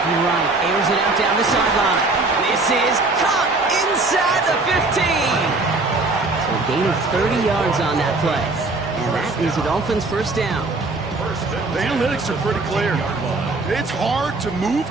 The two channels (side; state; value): left; quieter; 3.3 dB